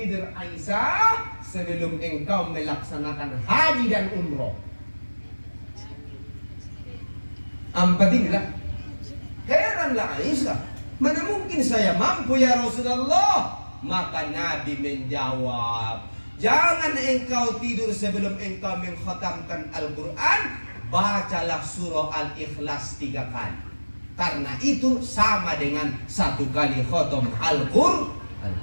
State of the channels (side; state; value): both; inverted; correlation -1.00